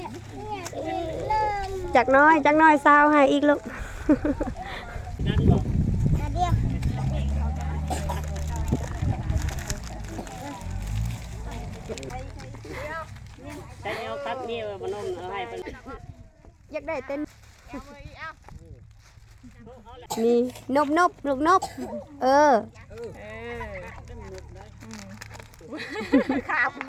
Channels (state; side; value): identical; both; correlation 1.00